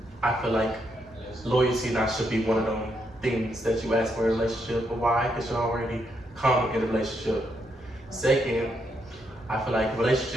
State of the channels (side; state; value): both; normal; correlation 0.78